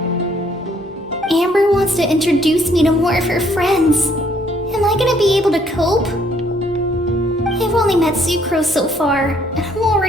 Amber wants to introduce me to more of her friends. Am I gonna be able to cope? I've only met Sucrose so far, and I'm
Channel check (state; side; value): normal; both; correlation 0.65